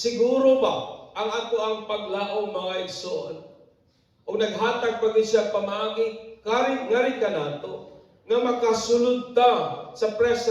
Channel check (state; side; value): identical; both; correlation 1.00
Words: ba ang ato ang paglaom, mga igsoon, o naghatag pag siya pamaagi, ngari ka nato, nga makasulod ta sa